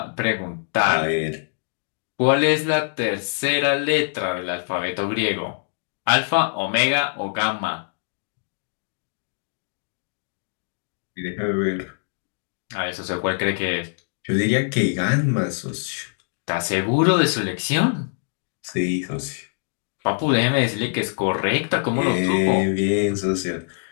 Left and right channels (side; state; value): right; silent; digital silence